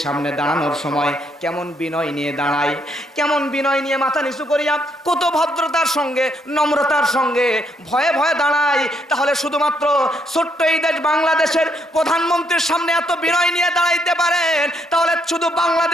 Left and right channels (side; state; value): both; normal; correlation 0.73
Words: সামনে দাঁড়ানোর সময় কেমন বিনয় নিয়ে দাঁড়ায়, কেমন বিনয় নিয়ে মাথা নিচু করিয়া কত ভদ্রতার সঙ্গে নম্রতার সঙ্গে ভয়ে ভয়ে দাঁড়ায়, তাহলে শুধুমাত্র ছোট্ট এই দেশ বাংলাদেশের প্রধানমন্ত্রীর সামনে এত বিনয় নিয়ে দাঁড়াইতে পারেন, তাহলে শুধু